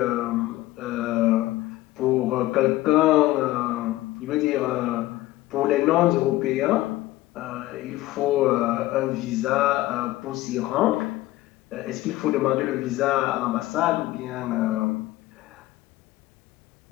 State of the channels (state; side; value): quieter; right; 17.1 dB